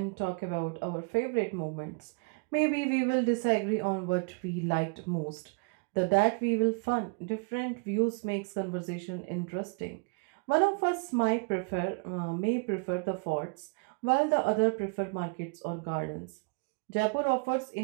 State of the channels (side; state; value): left; quieter; 34.0 dB